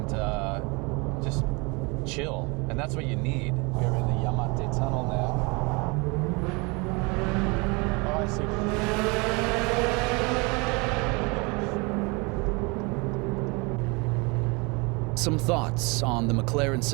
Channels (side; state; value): left; quieter; 28.7 dB